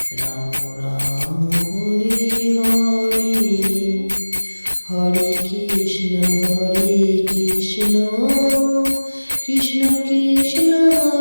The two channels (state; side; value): inverted; both; correlation -1.00